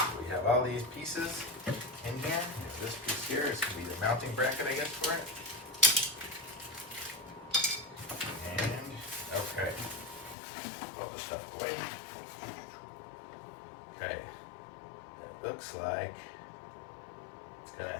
we have all these pieces in here. This piece here is going to be the mounting bracket, I guess, for it. And, okay. All the stuff away. Okay. It looks like it's going to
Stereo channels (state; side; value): drops out; right; at 10.4 s